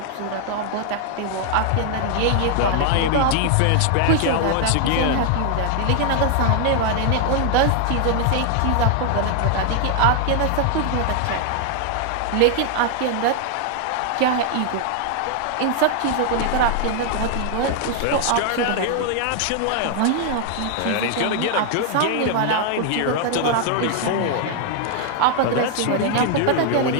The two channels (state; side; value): different; both; correlation 0.00